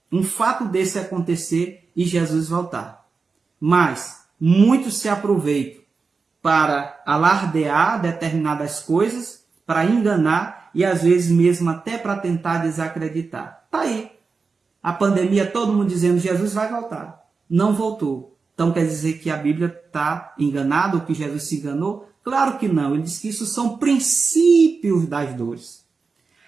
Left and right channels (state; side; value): quieter; left; 4.6 dB